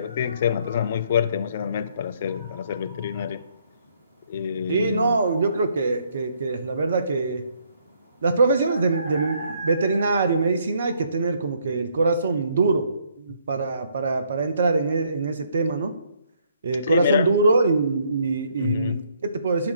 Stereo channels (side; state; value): both; inverted; correlation -0.68